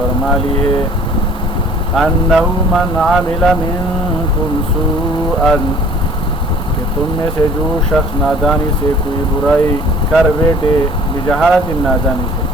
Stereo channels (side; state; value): both; normal; correlation 0.51